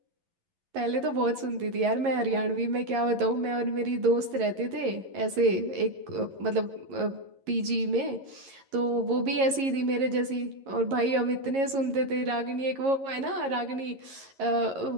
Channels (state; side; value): late; left; 11 ms